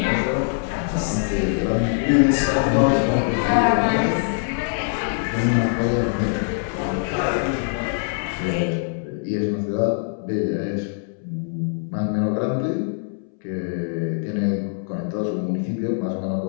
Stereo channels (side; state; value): right; silent; 63 dB below the other